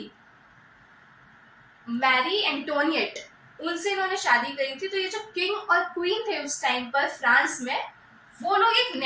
मैरी एंटोनिएट, उनसे इन्होंने शादी करी थी। तो ये जो किंग और क्वीन थे उस टाइम पर फ्रांस में, वो लोग एक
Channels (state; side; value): identical; both; correlation 1.00